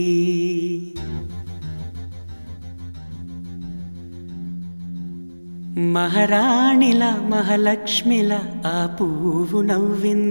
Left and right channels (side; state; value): both; inverted; correlation -1.00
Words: మహారాణిల మహాలక్ష్మిల ఆ పువ్వు